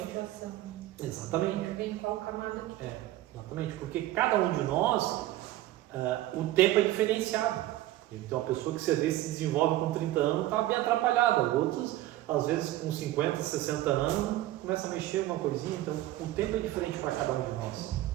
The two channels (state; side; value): quieter; left; 15.4 dB